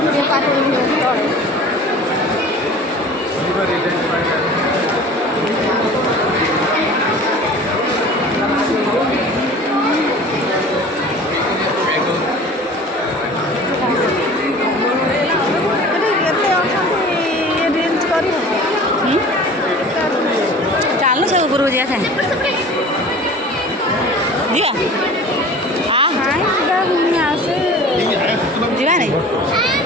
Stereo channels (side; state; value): both; normal; correlation 0.42